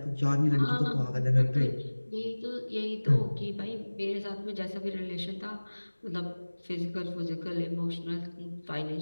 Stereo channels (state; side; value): inverted; both; correlation -1.00